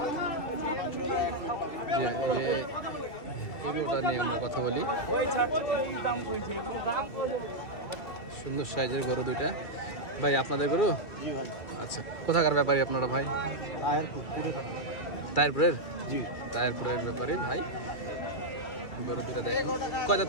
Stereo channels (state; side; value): late; right; 2.3 ms